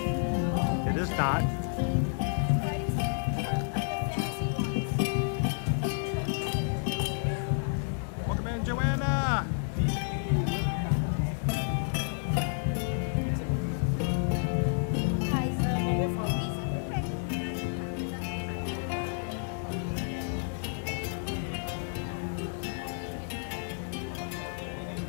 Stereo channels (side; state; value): right; silent; digital silence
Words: It is not. Welcome in, Joanna.